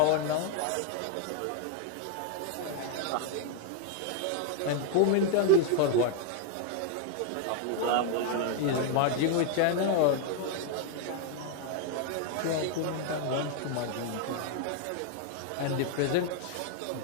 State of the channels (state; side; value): different; both; correlation 0.00